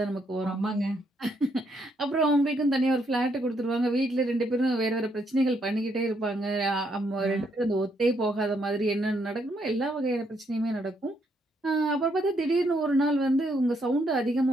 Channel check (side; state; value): both; normal; correlation 0.74